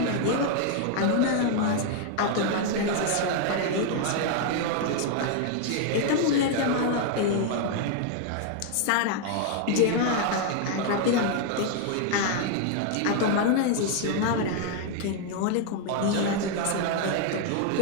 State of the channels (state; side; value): different; both; correlation 0.00